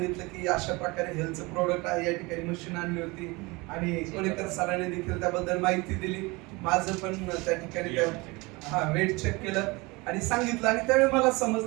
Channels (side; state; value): left; quieter; 24.7 dB